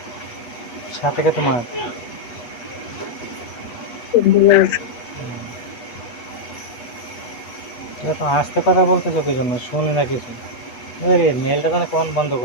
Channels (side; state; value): right; late; 8.3 ms